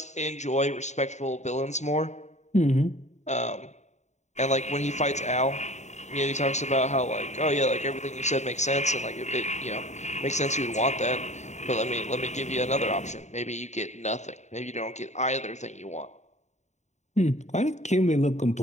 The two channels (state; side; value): late; right; 0.34 ms